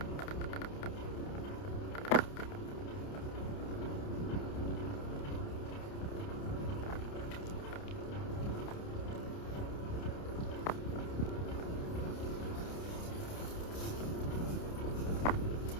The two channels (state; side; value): late; right; 29 ms